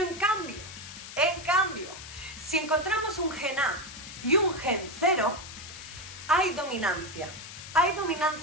en cambio, si encontramos un gen A y un gen 0, hay dominancia. Hay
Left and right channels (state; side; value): noise; left; hiss, 13 dB below the sound